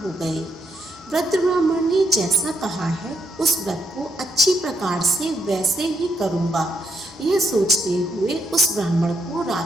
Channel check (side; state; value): right; noise; hum, 29 dB below the sound